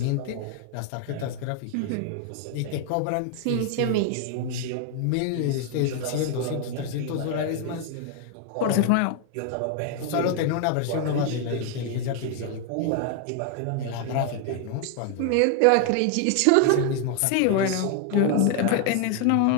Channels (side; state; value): both; different; correlation 0.00